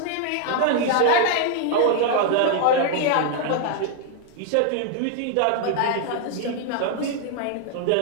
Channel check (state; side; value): different; both; correlation 0.00